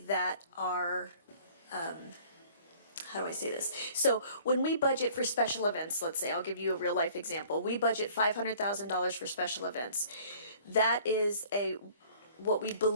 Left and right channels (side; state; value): both; inverted; correlation -0.52